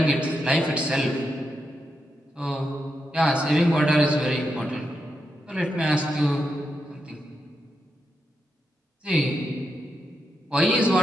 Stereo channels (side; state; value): both; normal; correlation 0.84